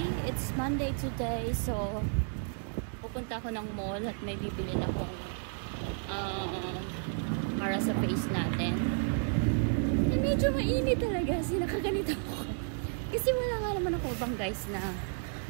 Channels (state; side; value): silent; left; 56 dB below the other